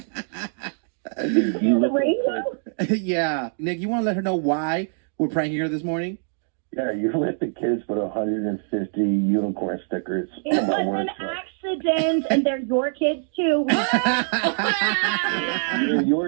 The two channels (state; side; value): silent; left; 61 dB below the other